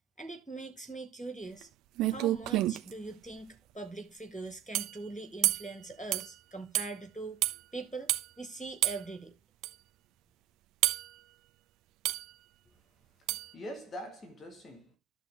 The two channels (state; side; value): quieter; left; 11.0 dB